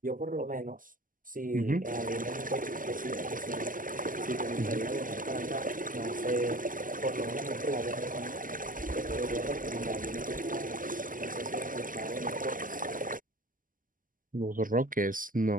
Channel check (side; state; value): left; late; 0.40 ms